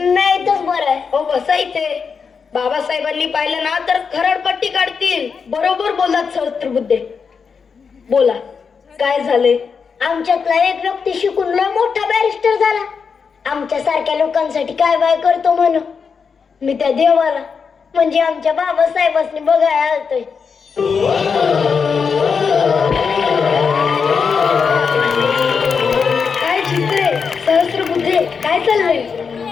इथंच बरं आहे. हो बसा इथे. बाबासाहेबांनी पाहिलं ना तर खरडपट्टी काढतील. बरोबर बोललात सहस्त्रबुद्धे. बोला, काय झाले? आमच्यातला एक व्यक्ती शिकून लय मोठा बॅरिस्टर झाला. आमच्या सारख्या लोकांसाठी काय बाय करतो म्हणून मी त्या देवाला म्हणजे आमच्या बाबासाहेबांनी बघायला आलतोय. काय चित्रे, सहस्त्रबुद्धे, काय चाललंय?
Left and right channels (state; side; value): quieter; right; 5.8 dB